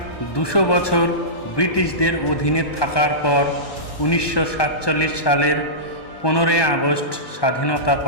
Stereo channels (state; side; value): late; right; 1.2 ms